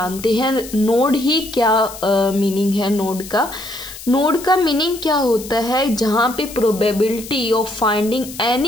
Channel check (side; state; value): left; noise; hiss, 14 dB below the sound